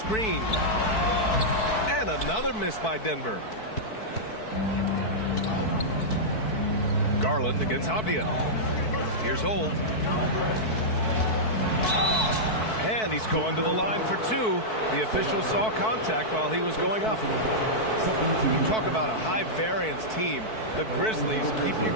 And another miss by Denver. Garland against Avdia. Here's Holt. And he's going to the line for 2. The official saw contact while he was going up. You talk about a high-variance team. The Grizzlies keep you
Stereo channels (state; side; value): late; right; 4.6 ms